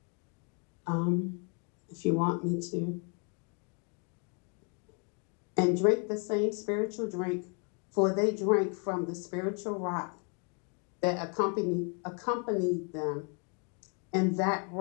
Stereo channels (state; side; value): quieter; right; 36.6 dB